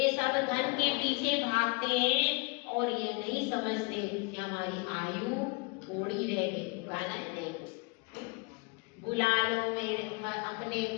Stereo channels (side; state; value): right; quieter; 30.1 dB